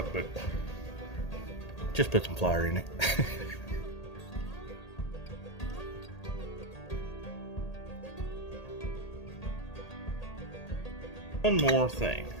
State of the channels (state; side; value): late; right; 1.8 ms